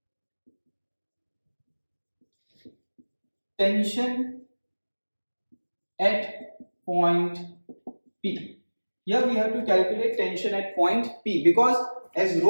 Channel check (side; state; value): both; inverted; correlation -1.00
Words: tension at point P. Here we have to calculate tension at point P, because as